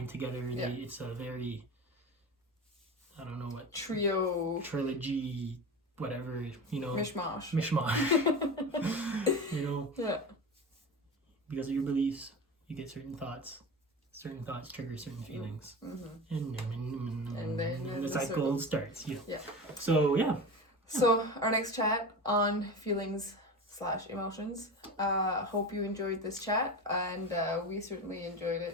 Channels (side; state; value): both; normal; correlation 0.28